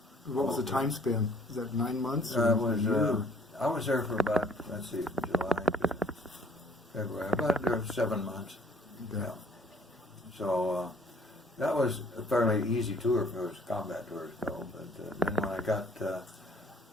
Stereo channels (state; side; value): normal; both; correlation 0.58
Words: What was the time span? Is that 9 months? I was there for about, let's see, from July to February, about 7 months. Okay. Yeah. So that was a fairly easy tour for those combat tours, though. But then when I got